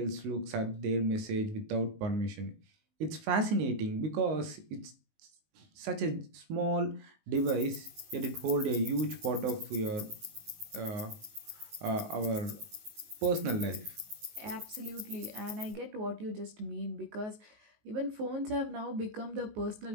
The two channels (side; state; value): left; late; 19 ms